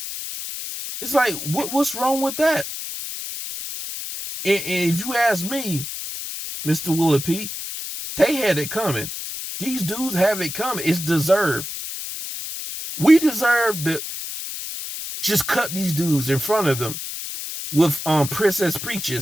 It's like, what's wrong with that? And if you ask me, Mr. Willie P, they had it coming. These dudes have it coming. It's deserved. We deserve to just cut these dudes in front of them with Princess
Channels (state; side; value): noise; left; hiss, 7 dB below the sound